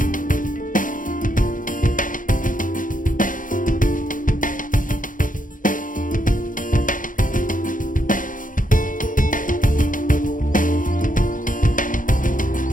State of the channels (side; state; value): right; late; 0.39 ms